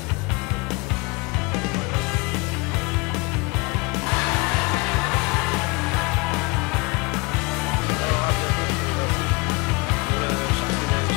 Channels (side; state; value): right; quieter; 26.8 dB